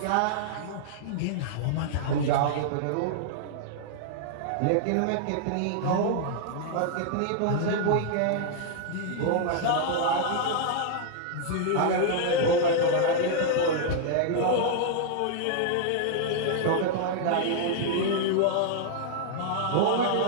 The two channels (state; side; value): different; both; correlation -0.01